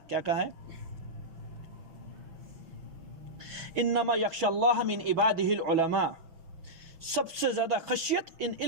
کیا کہا ہے؟ انما یخشی اللہ من عبادہ العلماء. سب سے زیادہ خشیت ان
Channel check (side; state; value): left; late; 6.2 ms